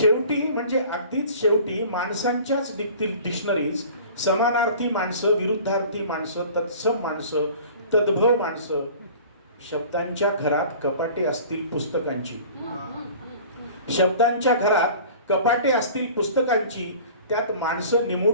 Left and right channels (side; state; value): both; inverted; correlation -0.44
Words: म्हणजे अगदीच शेवटी माणसांच्याच निघतील डिक्शनरीज. समानार्थी माणसं, विरुद्धार्थी माणसं, तत्सम माणसं, तद्भव माणसं. शब्दांच्या घरात कपाटे असतील पुस्तकांची, शब्दांच्या घरात कपाटे असतील पुस्तकांची, त्यात माणसं